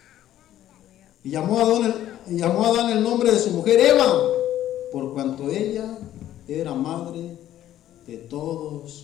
Y llamó a Adán el nombre de su mujer Eva, por cuanto ella era madre de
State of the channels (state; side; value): quieter; right; 12.5 dB